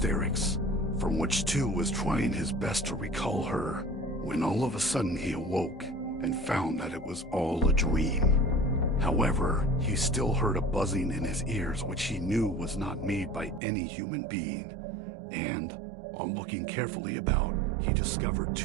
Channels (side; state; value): left; drops out; at 13.6 s